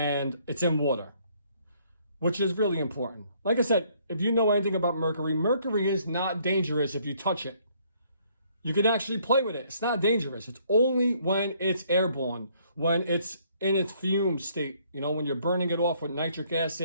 it's in water, which is really important. Like I said, if you know anything about mercury, mercury is not dangerous if you touch it. You can actually play with it. It's not dangerous. It's only when it's airborne, when it's in its fume state, when you're burning it off with nitric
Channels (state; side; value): inverted; both; correlation -0.65